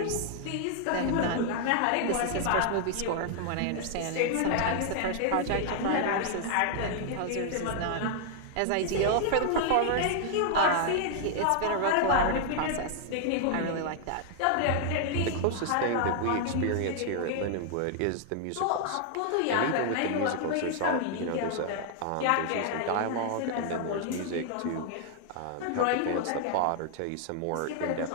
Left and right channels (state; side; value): different; both; correlation -0.01